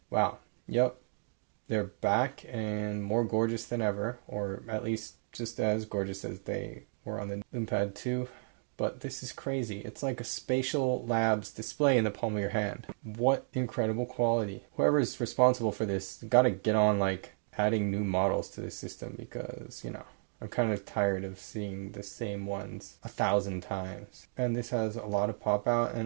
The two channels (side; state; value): left; silent; digital silence